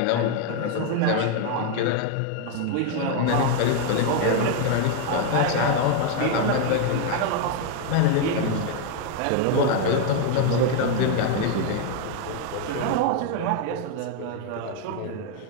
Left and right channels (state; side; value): different; both; correlation 0.01